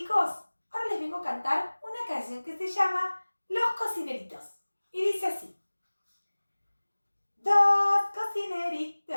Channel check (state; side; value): inverted; both; correlation -1.00